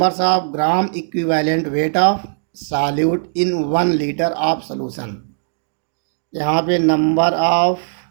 of gram equivalent weight of solute in 1 litre of solution. यहाँ पे number of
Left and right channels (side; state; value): left; silent; digital silence